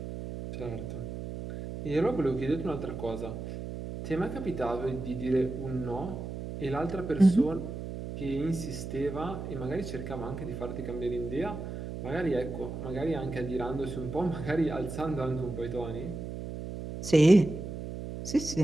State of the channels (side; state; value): right; noise; hum, 7 dB below the sound